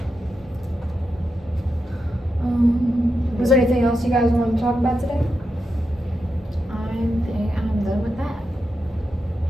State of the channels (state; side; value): normal; both; correlation 0.87